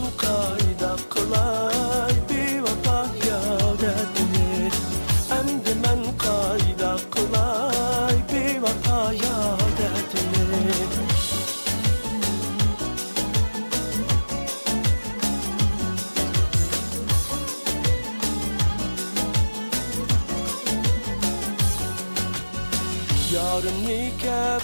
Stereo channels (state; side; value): inverted; both; correlation -1.00